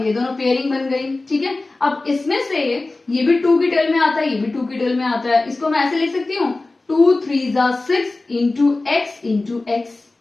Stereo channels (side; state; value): right; quieter; 3.2 dB